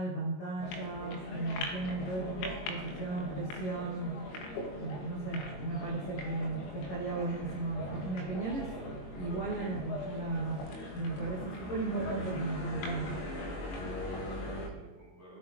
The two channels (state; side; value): late; right; 22 ms